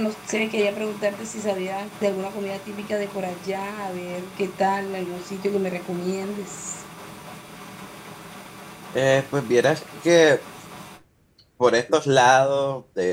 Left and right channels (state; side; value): identical; both; correlation 1.00